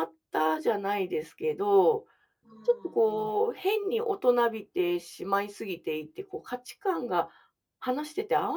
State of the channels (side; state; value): both; identical; correlation 1.00